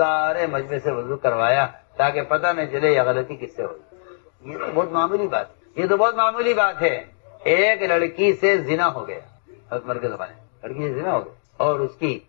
مجمع سے وضو کروایا تاکہ پتہ نہ چلے یہ غلطی کس سے ہوئی. یہ تو بہت معمولی بات ہے. ایک لڑکی سے زنا ہو گیا، حضرت عمر کے زمانے میں لڑکی سے زنا ہو گیا، اور اس کی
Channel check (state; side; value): silent; right; digital silence